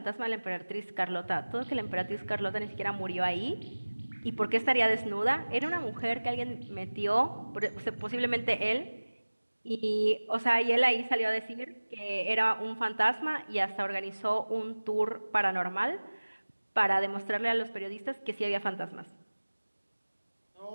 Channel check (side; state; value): both; inverted; correlation -1.00